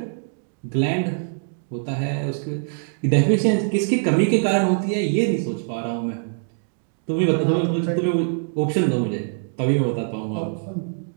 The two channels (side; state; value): left; silent; digital silence